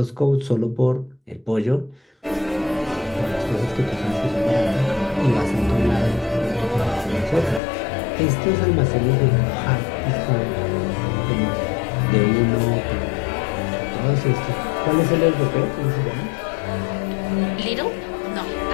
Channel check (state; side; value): drops out; right; at 7.6 s